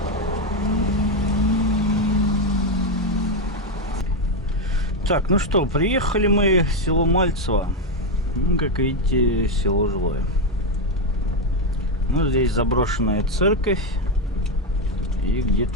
Так, ну что, приехали мы в село Мальцево. Ну, как видите, село жилое. Ну, здесь заброшенная церковь. И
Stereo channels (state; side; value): normal; both; correlation 0.07